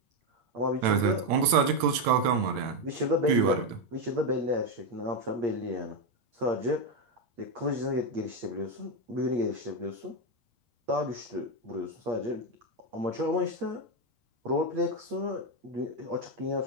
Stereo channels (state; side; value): late; left; 8.8 ms